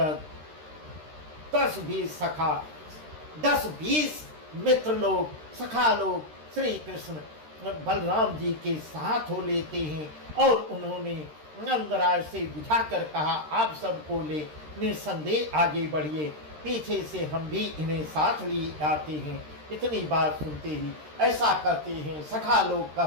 10-20 सखा, 10-20 मित्र लोग, सखा लोग श्री कृष्ण बलराम जी के साथ हो लेते हैं। और उन्होंने नंदराज से बुझाकर कहा आप सबको ले निसंदेह आगे बढ़िए, पीछे से हम भी इन्हें साथ लिए आते हैं। इतनी बात सुनते ही ऐसा कहते हैं, सखा लोग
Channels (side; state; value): left; late; 13 ms